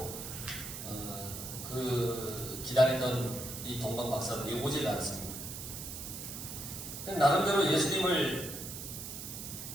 그 기다리던 이 동방박사들이 오질 않습니다. 나름대로 예수님을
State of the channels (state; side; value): noise; right; hiss, 8 dB below the sound